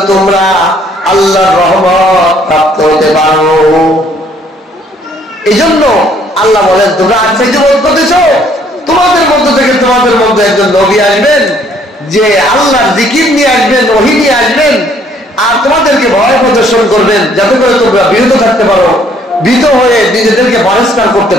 তোমরা আল্লাহর রহমত প্রাপ্ত হতে পারো। এই জন্য আল্লাহ বলেন, তোমরা আশ্চর্য বোধ করতেছ, তোমাদের মধ্য থেকে তোমাদের মধ্যে একজন নবী আসবেন, যে আল্লাহর জিকির নিয়ে আসবেন, ওহী নিয়ে আসবেন, আর তোমাদেরকে ভয় প্রদর্শন করবেন, যাতে করে তোমরা বিরত থাকতে পারো, ভীত হয়ে নিজেদেরকে পরিষ্কার করতে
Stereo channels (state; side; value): normal; both; correlation 0.63